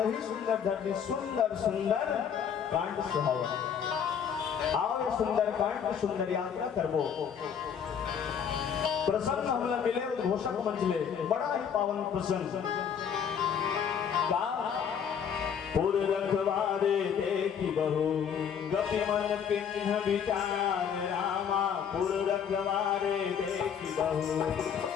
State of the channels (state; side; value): quieter; right; 7.7 dB